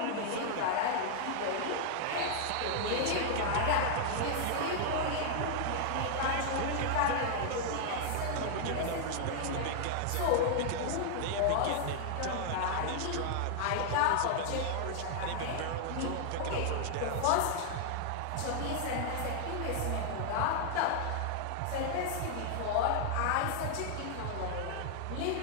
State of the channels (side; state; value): both; different; correlation -0.01